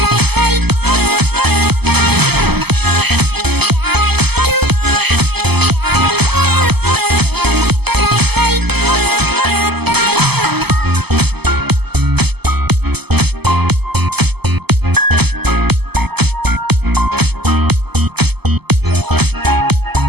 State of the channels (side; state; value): left; late; 0.97 ms